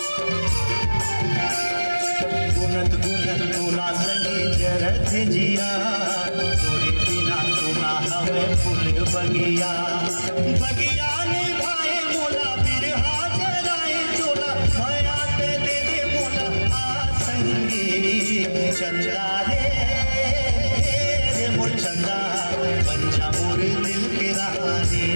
गुनत तोला संगी जरत जिया तोरे बिना सुना हवे फूल बगिया। बगिया ने भाई मोला बिरहा जराए चोला भया ते दे मोला आ संगी चंदा रे मोर चंदा बन जा मोर दिल के रानी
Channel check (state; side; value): inverted; both; correlation -1.00